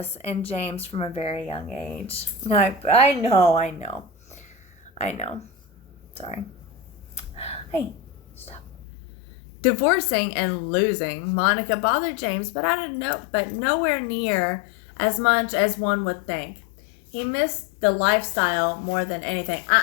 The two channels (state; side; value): drops out; right; at 8.8 s